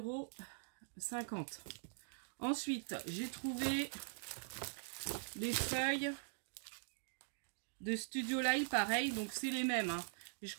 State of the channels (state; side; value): silent; left; digital silence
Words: €. Ensuite, j'ai trouvé des feuilles de Studio Light, pareil. Donc, c'est les mêmes. Hein. Et je